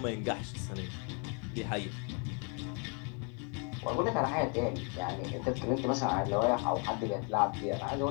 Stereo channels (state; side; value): quieter; right; 37.3 dB